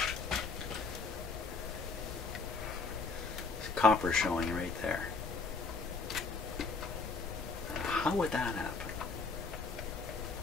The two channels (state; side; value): quieter; right; 4.3 dB